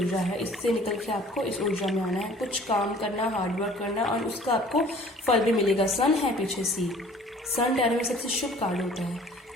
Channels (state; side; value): normal; both; correlation 0.51